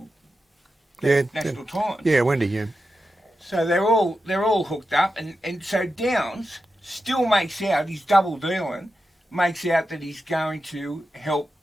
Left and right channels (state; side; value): normal; both; correlation 0.90